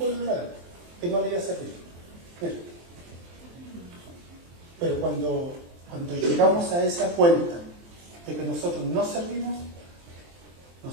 el lado, que no le iba a servir. Pero cuando llegamos a esa cuenta de que nosotros no servimos,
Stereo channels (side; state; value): left; late; 23 ms